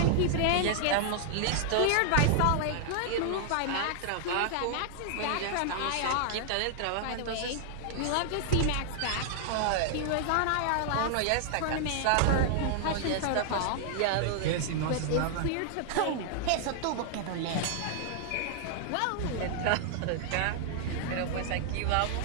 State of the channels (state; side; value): different; both; correlation 0.00